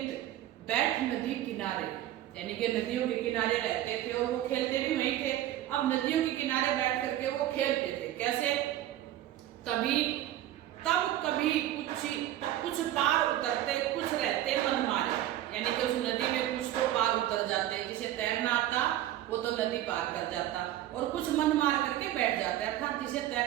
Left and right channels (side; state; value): left; quieter; 13.3 dB